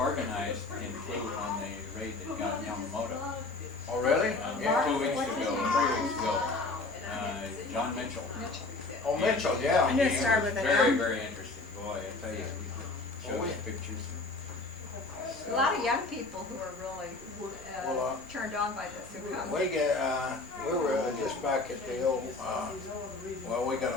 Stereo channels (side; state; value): right; quieter; 3.4 dB